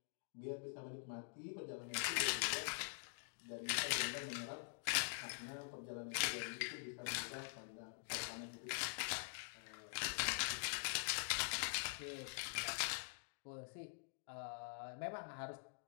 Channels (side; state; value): right; silent; digital silence